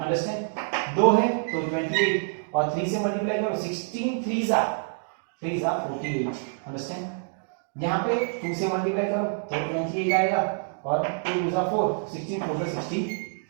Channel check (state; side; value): silent; left; digital silence